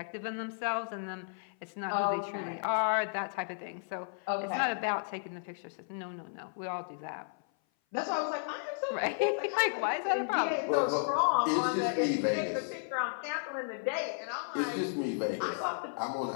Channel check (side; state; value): right; silent; 55 dB below the other